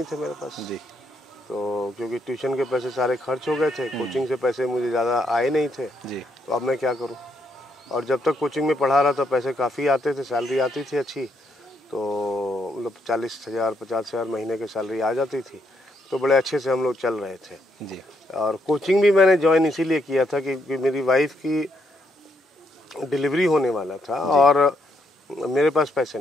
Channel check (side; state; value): both; normal; correlation 0.76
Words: थे मेरे पास जी। तो क्योंकि ट्यूशन के पैसे सारे खर्च हो गए थे, कोचिंग से पैसे मुझे ज़्यादा आए नहीं थे जी। तो अब मैं क्या करूं। और जब तक कोचिंग में पढ़ा रहा था पैसे काफ़ी आते थे, सैलरी आती थी अच्छी, तो मतलब 40,000 50,000 महीने की सैलरी आ जाती थी, तो बड़े अच्छे से हम लोग चल रहे थे जी। और कोचिंग भी मैंने ज्वाइन इसीलिए किया था कि मेरी वाइफ की डिलीवरी होने वाला था और मेरे पास पैसे